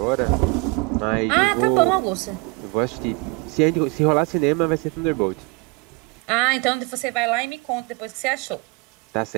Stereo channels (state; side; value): quieter; left; 28.1 dB